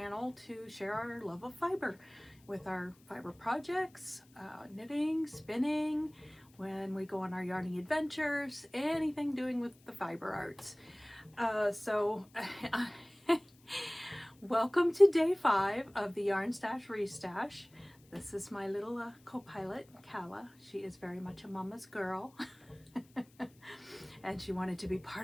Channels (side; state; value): left; noise; hiss, 29 dB below the sound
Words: to share our love of fiber with our fiber projects, knitting, spinning, when we go on our yarning adventures, anything doing with the fiber arts. Welcome to day 5 of the Yarn Stash Restash. This is my little co-pilot, Kala. She is very much a mama's girl. And she wanted to be